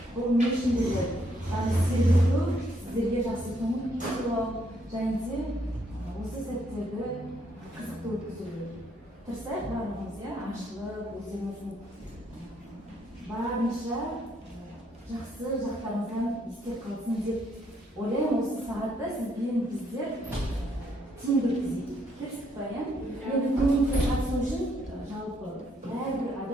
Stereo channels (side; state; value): both; normal; correlation 0.71